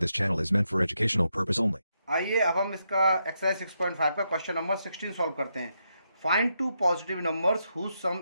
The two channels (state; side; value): inverted; both; correlation -0.81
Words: channel is meant for educational purpose only. आइए अब हम इसका exercise 6.5 का question number 16 solve करते हैं। Find two positive numbers whose